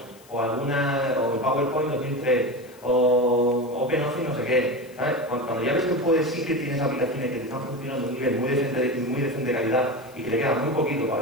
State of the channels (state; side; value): noise; left; hiss, 26 dB below the sound